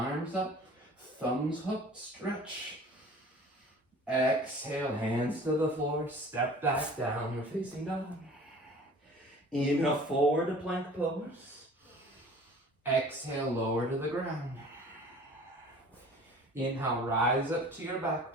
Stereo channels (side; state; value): both; normal; correlation 0.46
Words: up, thumbs hooked, stretch. Exhale, hands to the floor. Step back, downward facing dog. Inhale, forward to plank pose. Exhale, lower to the ground. Inhale, rise up to your back